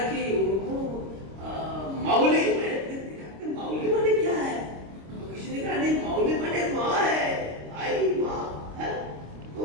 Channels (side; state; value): left; late; 26 ms